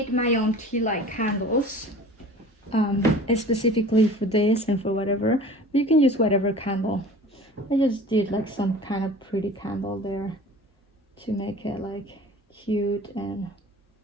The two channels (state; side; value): normal; both; correlation 0.42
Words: my own tea light candles, specifically for this and for whatever. You can use whatever candle. I just did like some kind of pretty candle there to make it like cute and